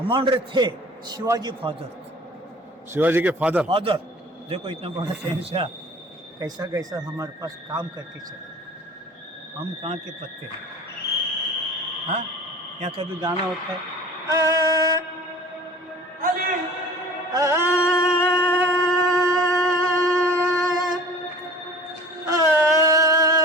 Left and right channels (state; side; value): normal; both; correlation 0.44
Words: थे, शिवाजी फादर, शिवाजी के फादर। फादर देखो इतना बड़ा शहंशाह कैसा कैसा हमारे पास काम करके चले, हम कहाँ के पत्ते हैं। हाँ, यहाँ कभी गाना होता है, अली